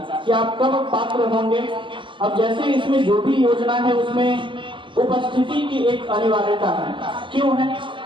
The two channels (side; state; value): left; late; 0.24 ms